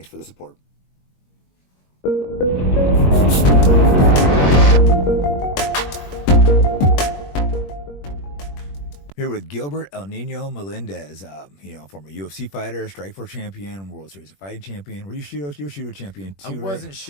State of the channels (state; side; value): late; right; 21 ms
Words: for the support. Here with Gilbert El Nino Melendez, former UFC fighter, Strikeforce champion, World Series of Fighting champion. Were you Shudo champion too? I wasn't